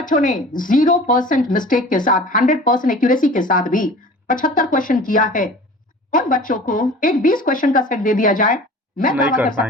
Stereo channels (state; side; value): normal; both; correlation 0.42